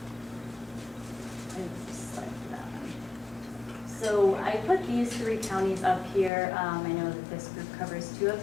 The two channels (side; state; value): right; drops out; at 6.3 s